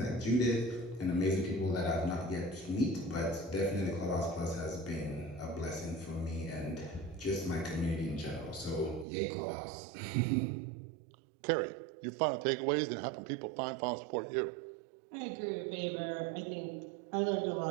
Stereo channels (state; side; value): drops out; left; at 9.1 s